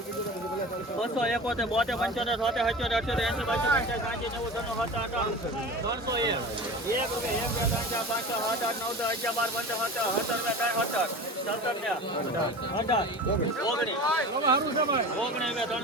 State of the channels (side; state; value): both; normal; correlation 0.34